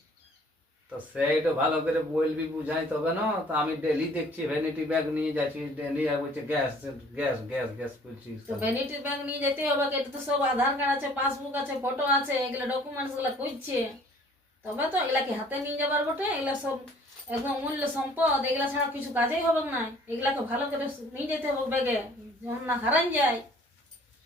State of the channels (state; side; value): normal; both; correlation 0.54